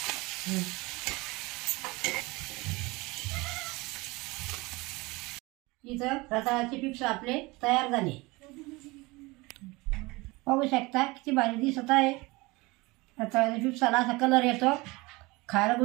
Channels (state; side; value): quieter; left; 23.4 dB